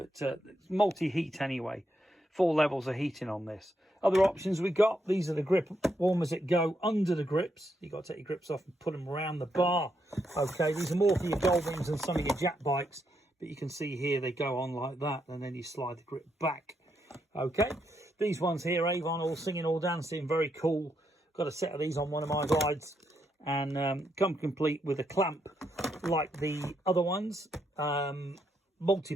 it's multi-heat anyway. 4 levels of heating on this. Other options we got, these are the grip warmers that go under the grips. You've got to take your grips off and put them around the bar. Okay, these are more for your Goldwings and some of your Jack bikes. But you can see here they go on like that and then you slide the grip back. Okay, these ones here, Avon, all singing, all dancing, very cool. Got a set of these on one of my rides. And come complete with a clamp like the other ones.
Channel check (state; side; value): normal; both; correlation 0.79